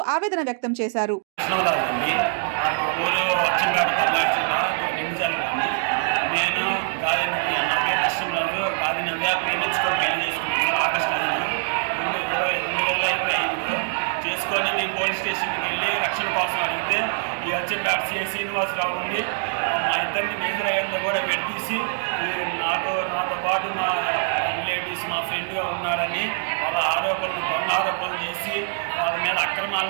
ఆవేదన వ్యక్తం చేశారు. మా ఊరు అచ్చంపేట పల్నాడు జిల్లా నింజాల గ్రామం. నేను గాది నవ్య, నా పేరు కృష్ణంరాజు. గాది నవ్య ప్రేమించుకొని పెళ్లి చేసుకున్నాను సార్. ఆగస్టు 5, 2025లో చేసుకొని మేము పోలీస్ స్టేషన్కి వెళ్ళి రక్షణ కోసం అడిగితే ఈ అచ్చంపేట సిఐ శ్రీనివాసరావు ఉండి మా ఇద్దరిని మేజర్ అయ్యేందులో కూడా విడదీసి నాతో పాటు మా రిలేటివ్స్, మా ఫ్రెండ్గా ఉన్నాడని వాళ్ళ దొంగ ఆరోపణలు చేసి వాళ్ళ మీద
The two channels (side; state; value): left; silent; digital silence